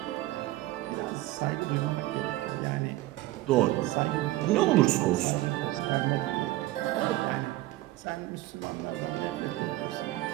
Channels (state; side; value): quieter; left; 17.3 dB